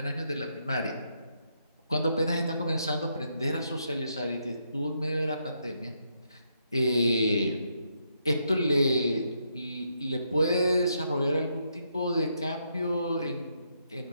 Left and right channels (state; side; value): inverted; both; correlation -0.78